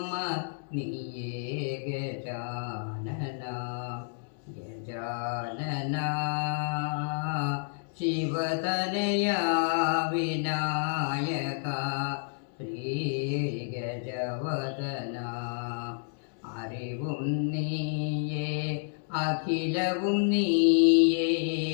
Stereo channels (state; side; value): silent; right; digital silence